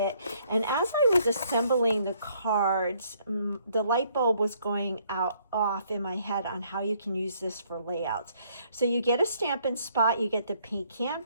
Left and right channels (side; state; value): both; inverted; correlation -0.66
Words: And as I was assembling the cards, the light bulb was going off in my head on how you can use this for layouts. So you get a Stampin' Spot, you get the pecan